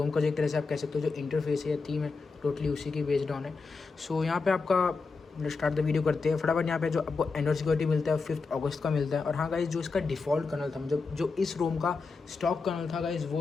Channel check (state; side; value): quieter; right; 4.4 dB